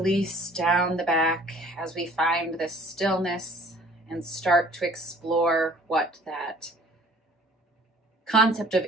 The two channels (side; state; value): both; normal; correlation 0.53